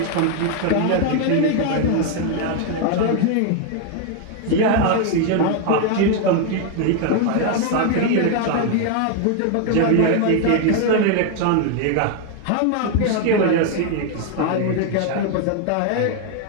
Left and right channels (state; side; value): different; both; correlation 0.01